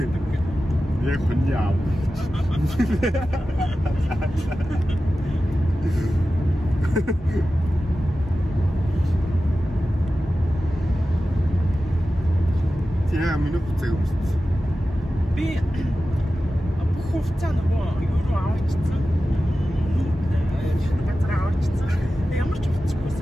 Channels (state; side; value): normal; both; correlation 0.94